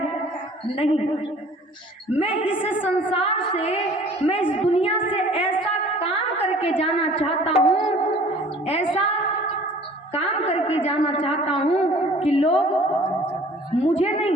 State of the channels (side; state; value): both; normal; correlation 0.50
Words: नहीं, मैं इस संसार से, मैं इस दुनिया से ऐसा काम करके जाना चाहता हूँ, ऐसा काम करके जाना चाहता हूँ कि लोग मुझे